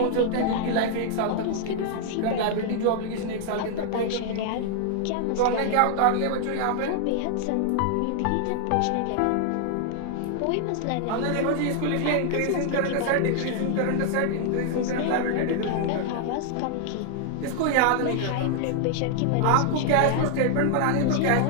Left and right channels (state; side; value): different; both; correlation 0.00